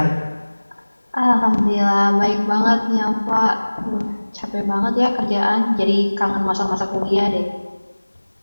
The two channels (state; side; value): inverted; both; correlation -1.00